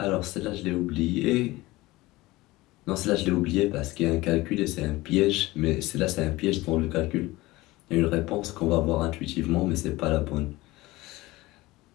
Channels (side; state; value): right; quieter; 19.7 dB